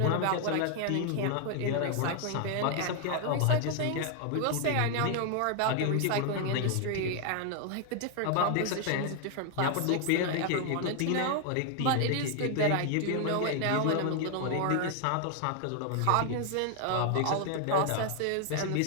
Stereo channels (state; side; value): different; both; correlation 0.00